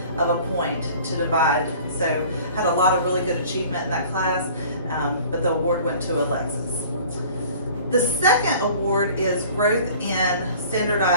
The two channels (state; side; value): inverted; both; correlation -0.48